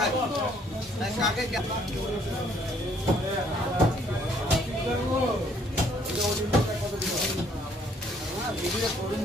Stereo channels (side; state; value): both; normal; correlation 0.64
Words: কাকে ভিডিও করুন।